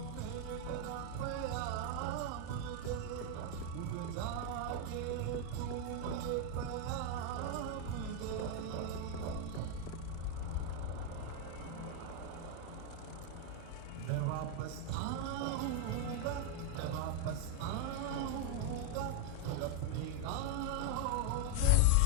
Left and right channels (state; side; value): different; both; correlation 0.01